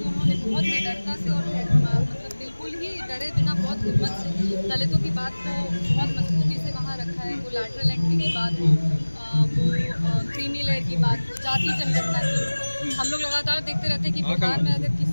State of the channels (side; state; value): both; inverted; correlation -1.00